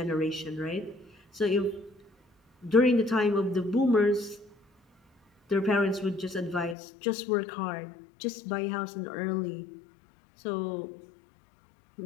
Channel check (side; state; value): right; drops out; at 6.8 s